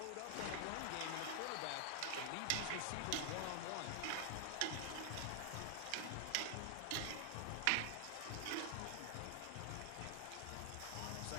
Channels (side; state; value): both; different; correlation 0.00